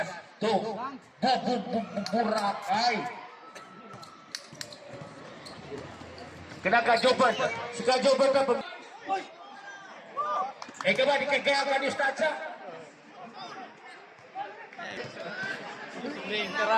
Burakay. Kinaka-Jobert. Si Ka-Jobert na. Ka ba, di kagaya ka ni Statsa?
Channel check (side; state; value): both; identical; correlation 1.00